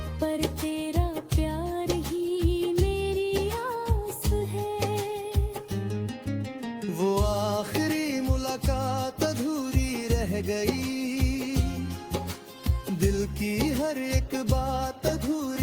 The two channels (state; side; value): identical; both; correlation 1.00